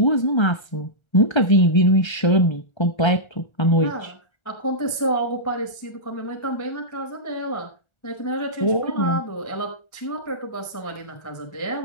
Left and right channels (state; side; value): late; right; 1.3 ms